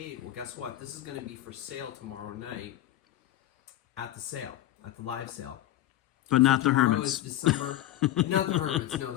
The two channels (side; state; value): right; quieter; 13.8 dB